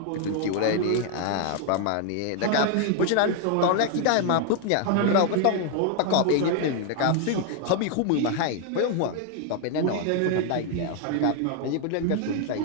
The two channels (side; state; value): both; different; correlation 0.00